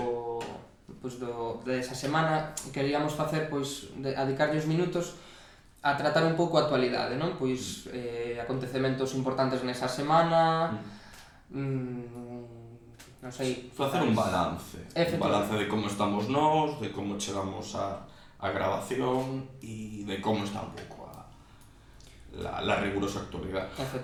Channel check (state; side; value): identical; both; correlation 1.00